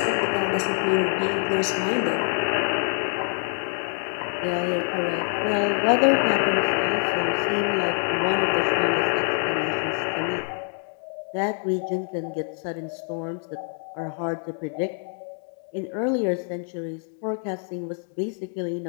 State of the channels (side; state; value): right; silent; 59 dB below the other